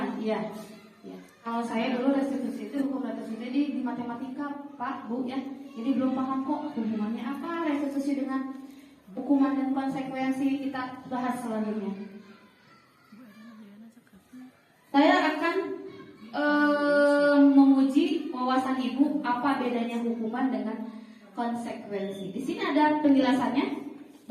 iya. Ya. Kalau saya dulu restitusi itu hukum restitusi di matematika, Pak, Bu ya. Jadi belum paham kok hubungannya apa restitusi dengan hukuman dan konsekuensi. Kita bahas selanjutnya. Saya akan menguji wawasan Ibu apa bedanya hukuman dengan konsekuensi. Di sini ada penjelasannya.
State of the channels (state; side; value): identical; both; correlation 1.00